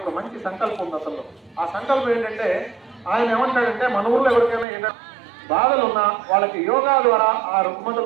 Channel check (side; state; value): left; drops out; at 4.7 s